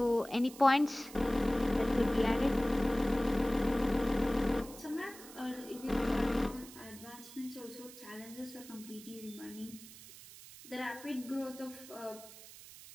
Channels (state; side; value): noise; right; hiss, 17 dB below the sound